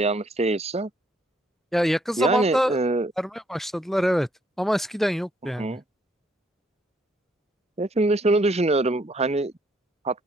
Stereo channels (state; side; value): normal; both; correlation 0.68